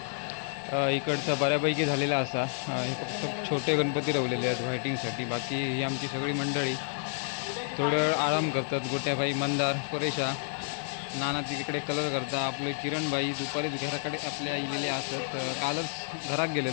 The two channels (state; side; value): silent; right; digital silence